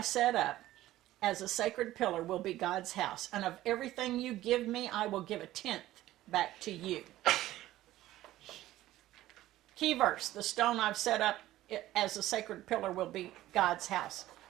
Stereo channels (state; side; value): quieter; left; 15.1 dB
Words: set up as a sacred pillar will be God's house, and of everything you give me, I will give 1/10 back to you. Key verse, the stone I've set up as a sacred pillar will be God's house.